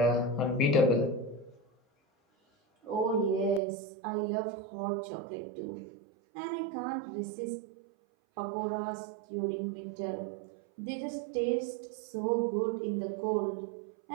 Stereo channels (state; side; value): drops out; left; at 3.6 s